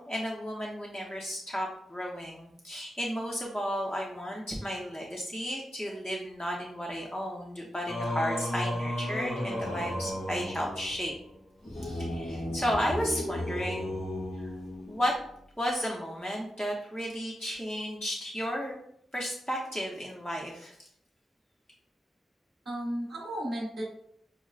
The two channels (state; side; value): normal; both; correlation 0.88